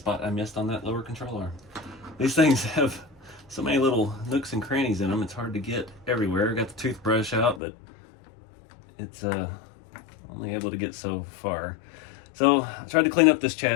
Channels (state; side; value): drops out; right; at 7.6 s